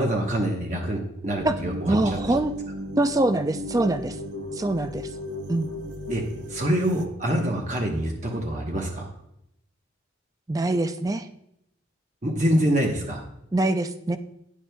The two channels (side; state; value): both; normal; correlation 0.73